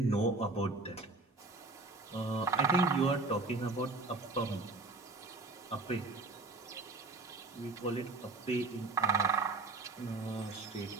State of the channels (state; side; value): quieter; left; 3.4 dB